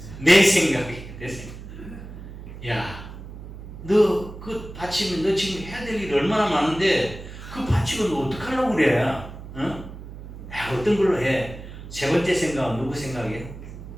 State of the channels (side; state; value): right; noise; hum, 13 dB below the sound